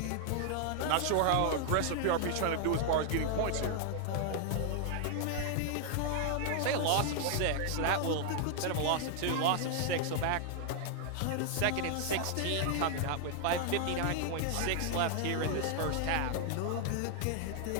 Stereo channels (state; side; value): different; both; correlation 0.00